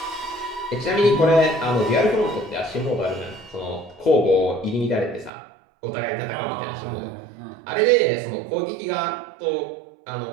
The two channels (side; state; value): left; drops out; at 5.3 s